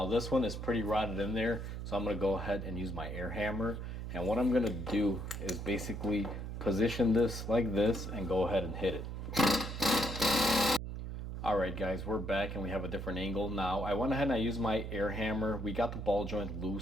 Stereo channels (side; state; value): right; noise; hum, 6 dB below the sound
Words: this one is pretty rotted in there, so I'm going to go ahead and use my air hammer. And what I'm going to do is basically position this like this and go ahead and hit it. Alright guys, we're back and we have a different angle now. I went ahead and I used my air hammer. We got the ball joint